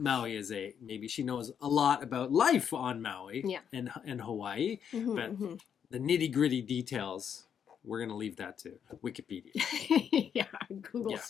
is maybe she knows a lot about life on Maui and Hawaii, but the nitty-gritty details, we're going to leave that to Wikipedia. Yeah, Google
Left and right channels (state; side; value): quieter; right; 8.0 dB